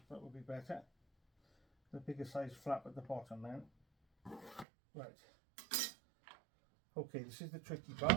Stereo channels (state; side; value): drops out; left; at 4.7 s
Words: That would be better. The bigger size flap at the bottom then. Right. Okay, this is the tricky